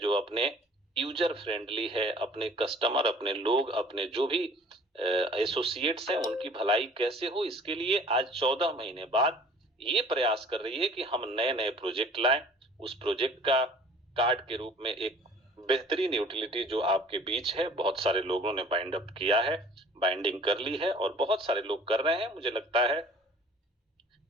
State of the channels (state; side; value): normal; both; correlation 0.50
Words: अपने यूजर फ्रेंडली है, अपने कस्टमर, अपने लोग, अपने जो भी एसोसिएट्स हैं उनकी भलाई कैसे हो, इसके लिए आज 14 महीने बाद ये प्रयास कर रही है कि हम नए नए प्रोजेक्ट लाएं। उस प्रोजेक्ट का कार्ड के रूप में एक बेहतरीन यूटिलिटी जो आपके बीच है, बहुत सारे लोगों ने बाइंड अप किया है, बाइंडिंग कर ली है और बहुत सारे लोग कर रहे हैं। मुझे लगता है